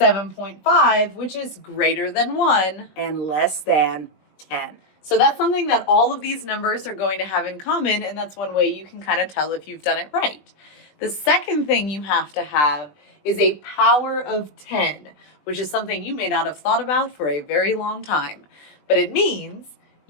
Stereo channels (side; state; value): right; late; 20 ms